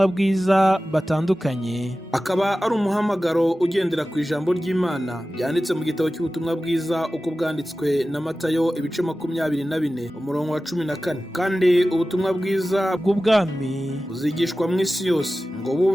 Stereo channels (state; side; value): normal; both; correlation 0.95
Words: bwiza batandukanye, akaba ari umuhamagaro ugendera ku ijambo ry'Imana byanditse mu gitabo cy'ubutumwa bwiza uko bwanditswe na Matayo ibice 24 umurongo wa 14. Kandi ubutumwa bwiza bw'ubwami buzigishwa mu isi yose ngo